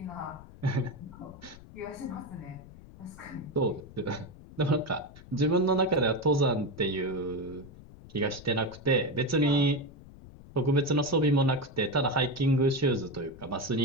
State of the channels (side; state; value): left; noise; rumble, 19 dB below the sound